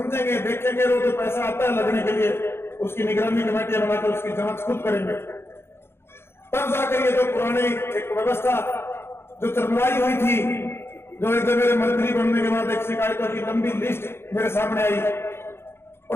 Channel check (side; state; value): right; late; 0.12 ms